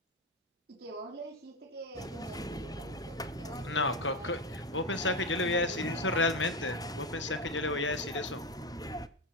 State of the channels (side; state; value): both; normal; correlation 0.14